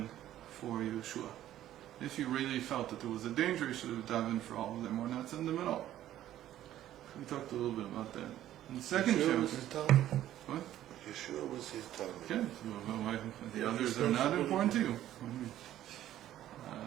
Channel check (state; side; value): quieter; left; 12.7 dB